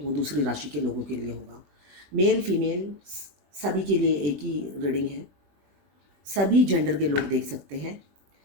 वो दूसरी राशि के लोगों के लिए होगा। मेल फीमेल सभी के लिए एक ही रीडिंग है, सभी जेंडर के लोग देख सकते हैं।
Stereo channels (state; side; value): late; left; 21 ms